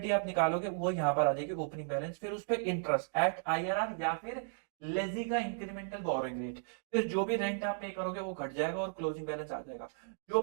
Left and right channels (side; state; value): left; silent; digital silence